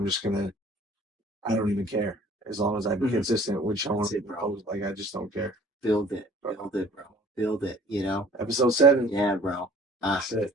just gonna. I don't even care as long as I'm consistent with showing That's it, bro. up. Like I just don't care. Build it, bro. Build it, you know? Episode 7. Yeah, bro. That's it.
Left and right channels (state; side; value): normal; both; correlation 0.52